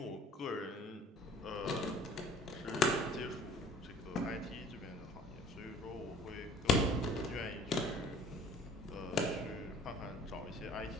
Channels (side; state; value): both; normal; correlation 0.50